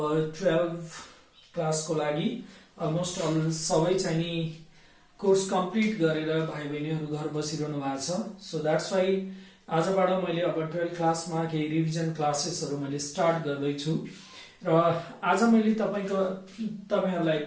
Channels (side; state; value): both; identical; correlation 1.00